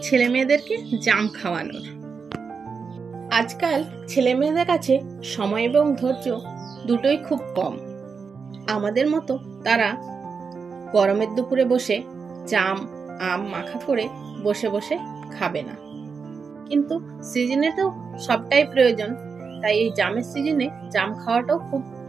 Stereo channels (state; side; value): quieter; left; 5.4 dB